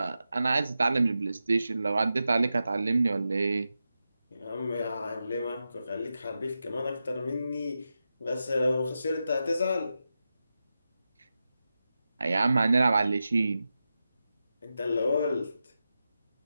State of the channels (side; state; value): both; inverted; correlation -0.90